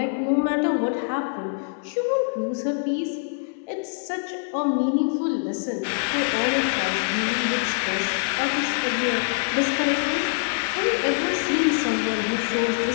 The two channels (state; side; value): silent; right; 59 dB below the other